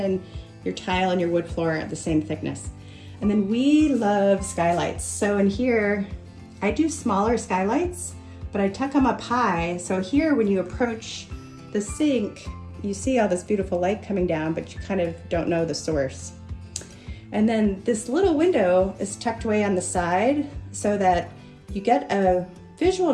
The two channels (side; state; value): both; identical; correlation 1.00